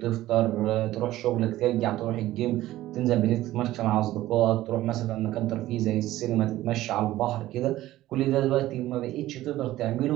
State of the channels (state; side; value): quieter; left; 15.4 dB